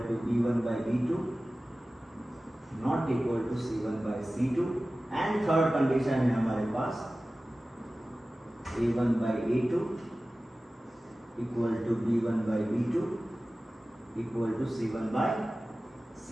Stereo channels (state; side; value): normal; both; correlation 0.96